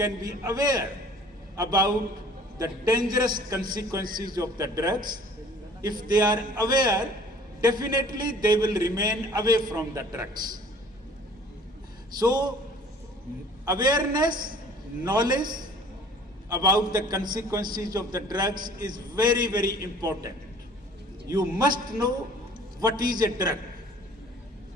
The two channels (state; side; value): normal; both; correlation 0.51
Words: be aware about the dangerous consequences of the drugs. If they are aware, definitely they will remain away from the drugs. So awareness, knowledge about the consequences of the drugs is very, very important. You must know what is a drug.